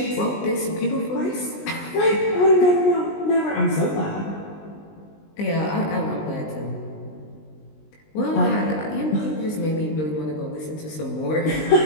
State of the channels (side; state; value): right; late; 19 ms